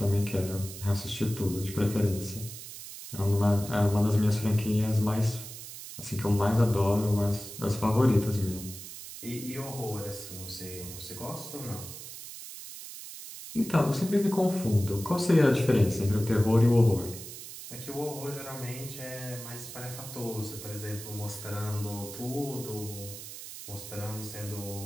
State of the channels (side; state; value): right; noise; hiss, 12 dB below the sound